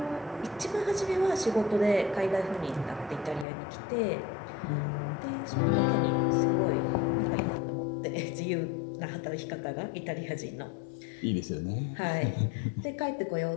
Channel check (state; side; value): drops out; right; at 3.5 s